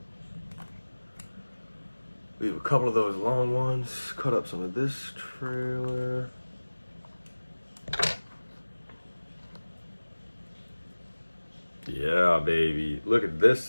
We have a couple of those long ones. Cut up some of this trailer. Yeah, baby. Look at this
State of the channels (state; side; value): inverted; both; correlation -1.00